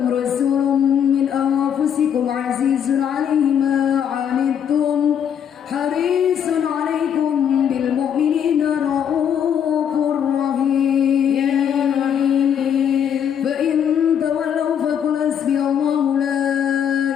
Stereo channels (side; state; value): right; quieter; 8.6 dB